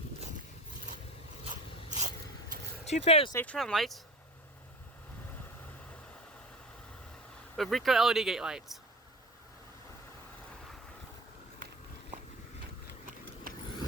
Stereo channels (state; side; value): normal; both; correlation 0.34